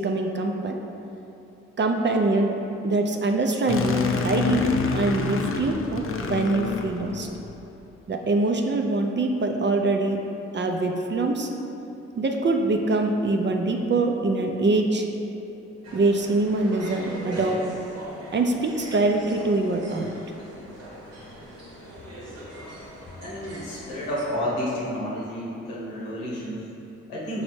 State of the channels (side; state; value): both; normal; correlation 0.45